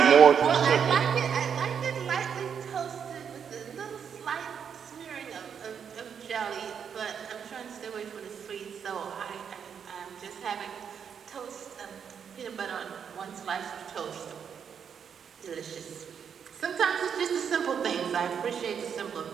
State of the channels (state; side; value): quieter; left; 7.4 dB